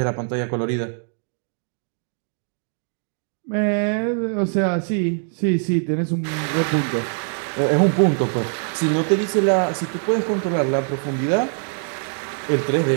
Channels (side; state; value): left; silent; 55 dB below the other